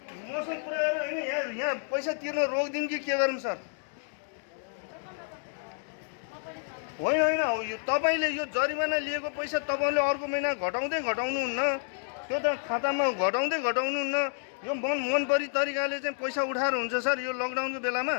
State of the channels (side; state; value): right; silent; 58 dB below the other